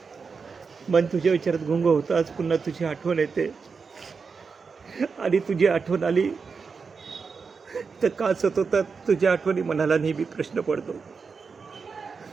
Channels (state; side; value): quieter; left; 5.2 dB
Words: मन तुझ्या विचारात गुंग होताच पुन्हा तुझी आठवण येते. आणि तुझी आठवण आली तर का सतवतात तुझ्या आठवणी, मनाला नेहमी प्रश्न पडतो.